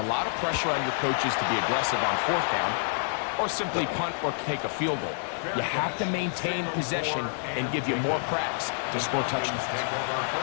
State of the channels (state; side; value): silent; right; digital silence